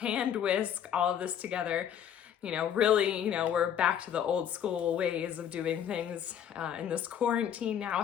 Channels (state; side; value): quieter; right; 9.2 dB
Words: whisk all of this together. Really, we're back to the old school ways of doing things in this quarantine now